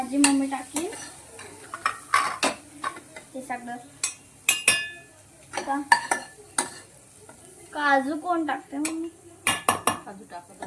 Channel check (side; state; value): both; identical; correlation 1.00